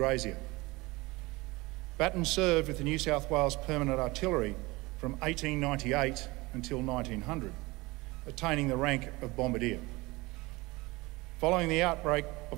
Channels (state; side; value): quieter; left; 22.5 dB